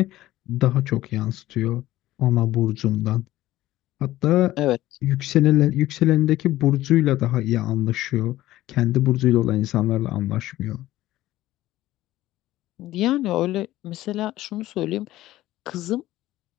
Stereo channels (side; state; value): right; quieter; 15.6 dB